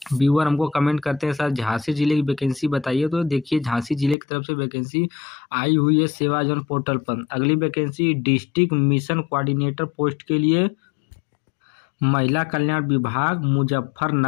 व्यूअर हमको कमेंट करते हैं सर झांसी जिले की वैकेंसी बताइए। तो देखिए झांसी जिले की तरफ से वैकेंसी आई हुई है सेवा योजन पोर्टल पर। अगली vacancy district mission coordinator post के लिए महिला कल्याण विभाग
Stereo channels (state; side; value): drops out; right; at 4.2 s